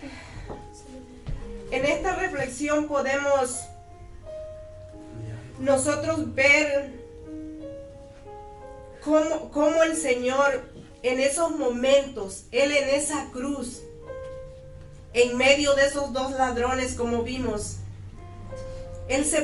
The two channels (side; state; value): both; identical; correlation 1.00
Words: En esta reflexión podemos nosotros ver cómo el Señor en esos momentos, Él en esa cruz, en medio de esos dos ladrones como vimos, Él se